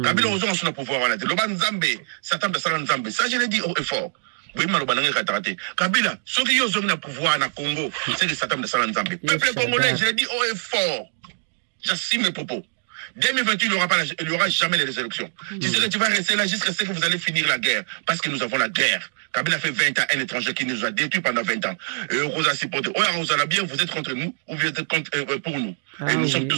Kabila, ceux qui ont le pouvoir na Congo, c'est le Satan de Salanzambe. Peuple congolais, je l'ai dit haut et fort. J'assume mes propos. 2028, il n'y aura jamais les élections. Tu sais que tu vas rester là jusqu'à ce que vous allez finir la guerre. Parce que nous avons la guerre. Kabila fait 20 ans, un étranger qui nous a détruits pendant 20 ans. Et on a supporté. On a bien, vous êtes contre nous ou vous êtes contre, pour nous. Et nous sommes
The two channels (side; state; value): left; silent; digital silence